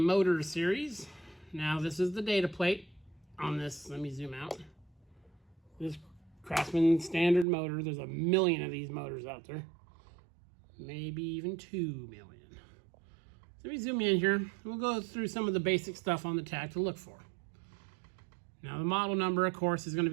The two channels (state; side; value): drops out; left; at 7.5 s